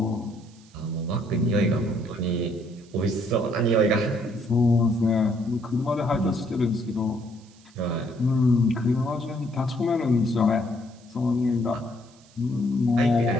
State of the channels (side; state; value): right; noise; hiss, 28 dB below the sound